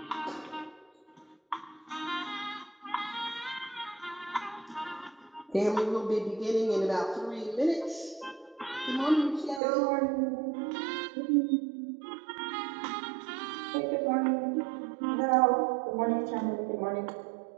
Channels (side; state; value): left; drops out; at 9.6 s